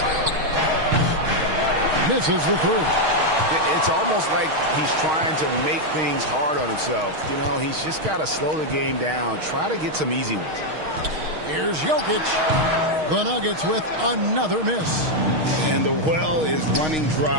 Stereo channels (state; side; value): late; left; 6.4 ms